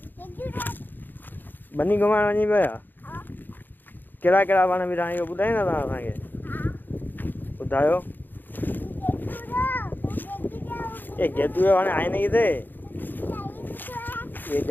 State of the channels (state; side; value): late; right; 0.091 ms